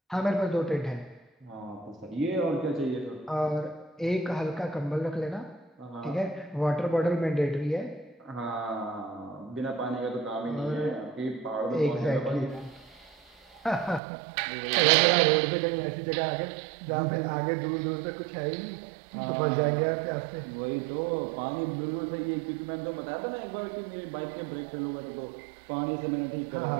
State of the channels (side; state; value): left; drops out; at 14.0 s